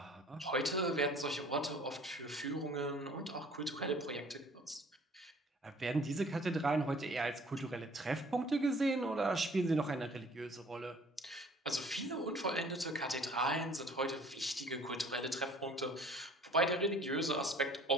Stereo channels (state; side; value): normal; both; correlation 0.52